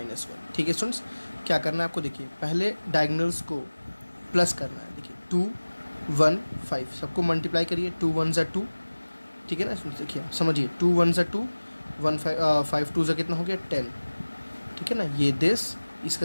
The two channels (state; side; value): inverted; both; correlation -1.00